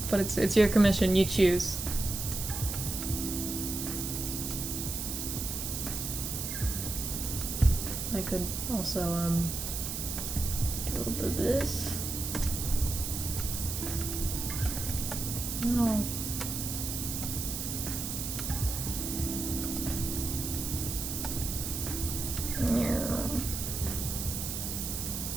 But it's your commission. You choose. I could also do a little bit of this. Oh.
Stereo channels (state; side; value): noise; right; hiss, 4 dB below the sound